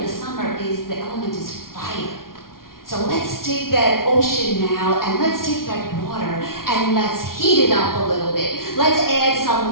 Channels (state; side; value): late; right; 0.92 ms